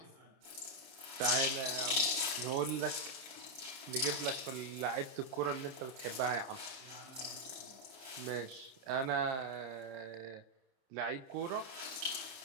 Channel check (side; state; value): left; late; 30 ms